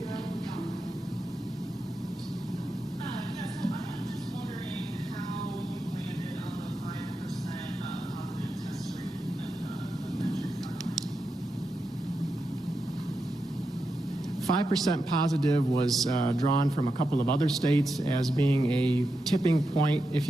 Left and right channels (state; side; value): normal; both; correlation 0.87